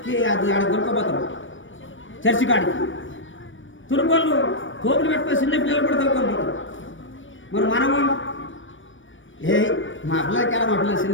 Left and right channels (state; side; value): late; right; 0.56 ms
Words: అది ఆడ దొరకపోతారు చర్చి కాడికి. తురుకోళ్ళు కోపులు పెట్టుకొని చిన్న పిల్లలు కూడా దొరకొని పోతారు. మరి మనము మా పిల్లలకి ఎలా మా పిల్లలు